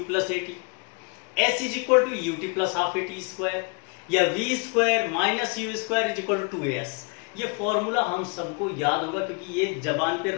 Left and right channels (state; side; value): quieter; right; 32.4 dB